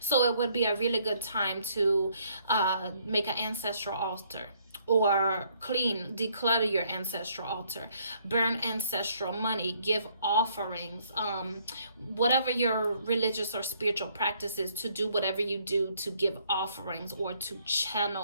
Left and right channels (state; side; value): inverted; both; correlation -0.67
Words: So it would be a really good time to make an ancestral altar, or clean, declutter your ancestral altar, burn ancestral money, give offerings, whatever your religious or spiritual practice is, to do whatever you do to give offerings or to